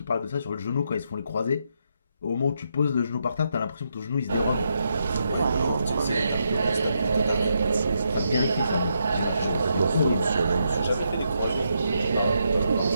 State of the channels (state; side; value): inverted; both; correlation -0.80